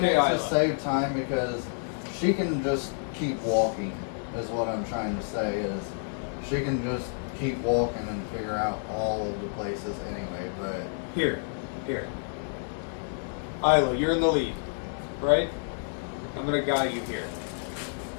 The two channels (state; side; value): silent; right; digital silence